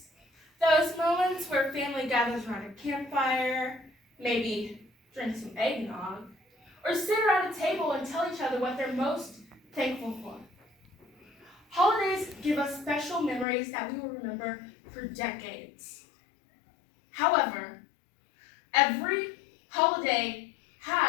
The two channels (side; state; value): right; drops out; at 13.5 s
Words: those moments where family gathers around a campfire, maybe drink some eggnog, or sit around a table and tell each other what they're most thankful for. Holidays give us special memories that we will remember for decades. However, every holiday